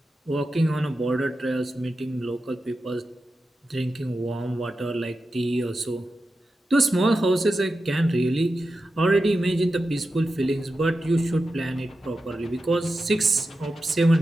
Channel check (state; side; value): normal; both; correlation 0.91